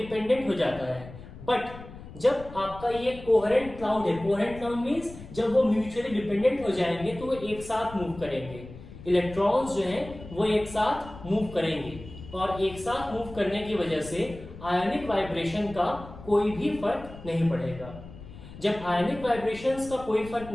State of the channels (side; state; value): left; noise; rumble, 15 dB below the sound